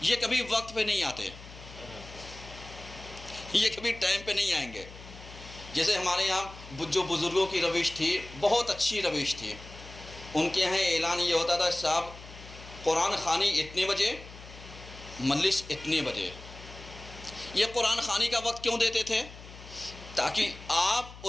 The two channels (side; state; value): left; noise; hum, 16 dB below the sound